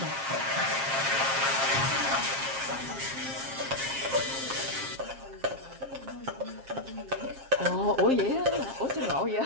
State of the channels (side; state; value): left; late; 7.4 ms